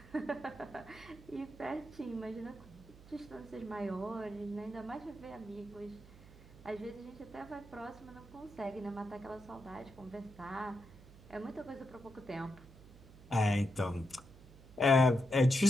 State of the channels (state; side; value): noise; right; hum, 20 dB below the sound